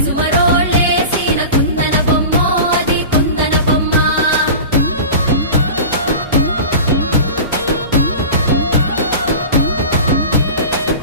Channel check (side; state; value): both; inverted; correlation -0.33